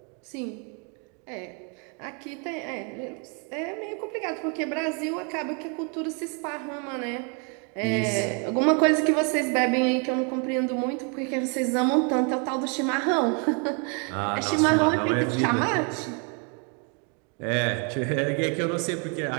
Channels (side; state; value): left; quieter; 36.7 dB